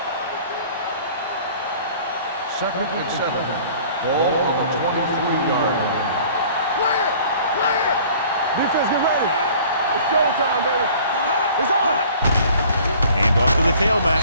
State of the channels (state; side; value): inverted; both; correlation -0.50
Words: Second and 7. Ball on the 23-yard line. Clear! Clear! Defense, get ready. It's showtime, baby. It's on! Hand off to the